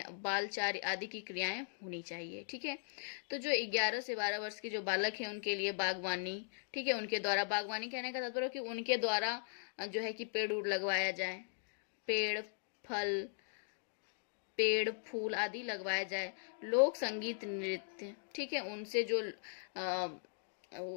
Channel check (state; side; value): silent; right; digital silence